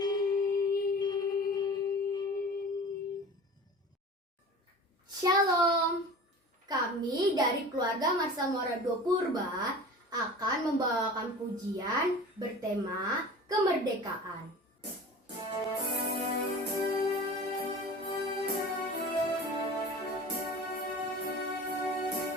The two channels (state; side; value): normal; both; correlation 0.38